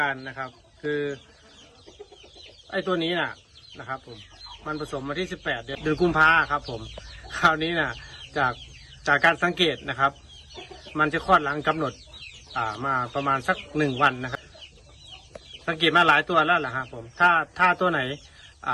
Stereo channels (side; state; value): both; identical; correlation 1.00